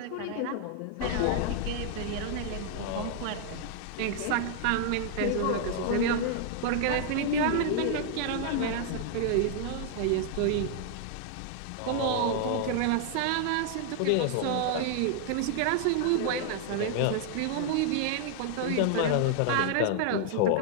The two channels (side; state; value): both; different; correlation 0.00